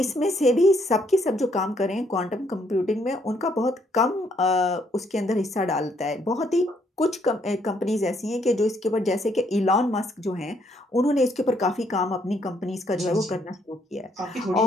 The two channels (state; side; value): normal; both; correlation 0.70